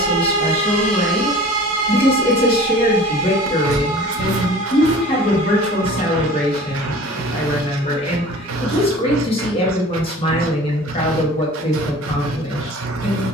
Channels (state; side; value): normal; both; correlation 0.43